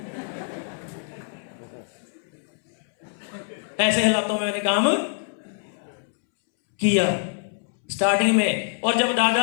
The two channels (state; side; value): silent; right; 62 dB below the other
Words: ऐसे हालातों में मैंने काम किया स्टार्टिंग में। और जब दादा